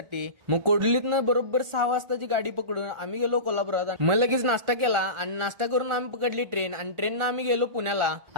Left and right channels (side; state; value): left; late; 1.4 ms